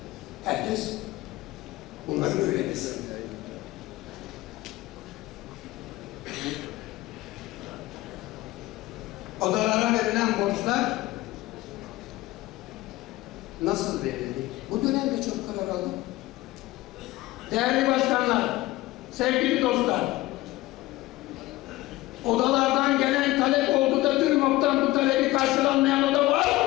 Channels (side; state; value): right; quieter; 18.3 dB